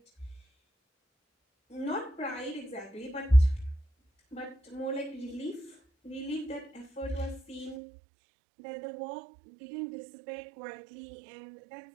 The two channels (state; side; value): drops out; left; at 7.8 s